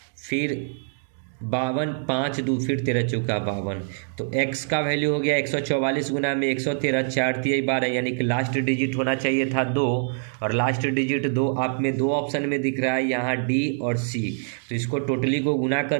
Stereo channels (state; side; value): silent; left; digital silence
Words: फिर 52 5 2, फिर 13 चौका 52, तो x का वैल्यू हो गया 144 गुना में 113, 4 तिहाई 12, यानी कि लास्ट डिजिट होना चाहिए था 2, और लास्ट डिजिट 2 आप में 2 ऑप्शन में दिख रहा है यहाँ D और C, तो इसको टोटली को गुना